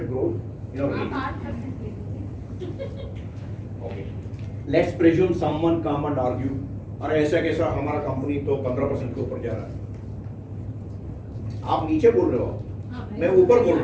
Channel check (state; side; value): identical; both; correlation 1.00